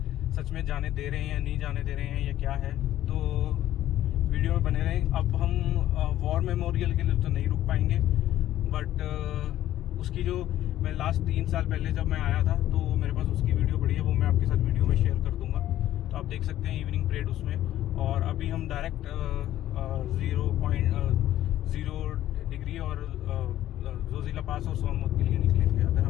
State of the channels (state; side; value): quieter; right; 13.2 dB